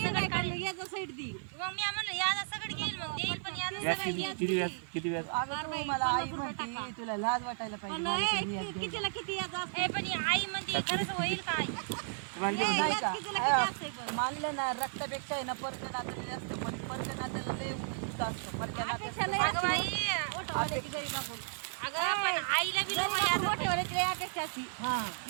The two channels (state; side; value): silent; left; 55 dB below the other